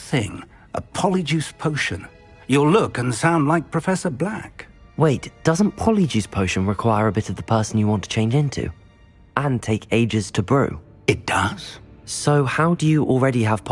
A polyjuice potion. You'll look and sound like Professor Black. Wait, doesn't polyjuice potion require a bit of the person you want to change into? And take ages to brew? It does. So how do you already have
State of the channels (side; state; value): both; identical; correlation 1.00